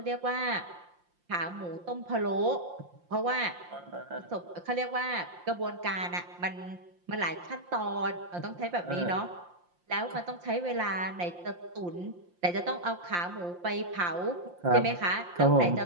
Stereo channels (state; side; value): late; left; 5.7 ms